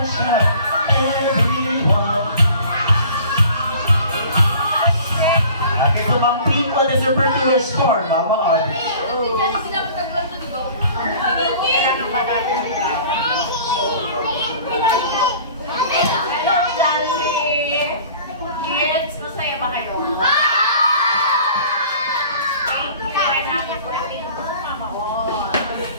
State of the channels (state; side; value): inverted; both; correlation -0.47